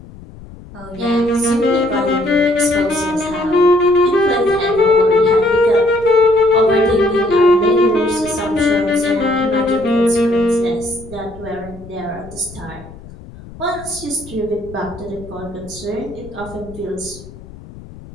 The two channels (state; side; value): noise; left; rumble, 18 dB below the sound